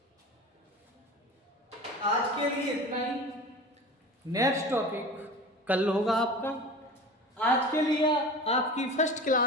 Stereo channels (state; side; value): normal; both; correlation 0.35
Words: आज के लिए इतना ही, नेक्स्ट टॉपिक कल होगा आपका। आज के लिए आपकी फर्स्ट